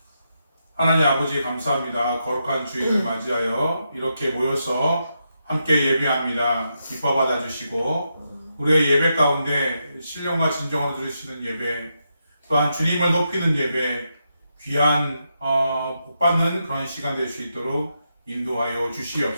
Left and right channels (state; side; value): inverted; both; correlation -0.84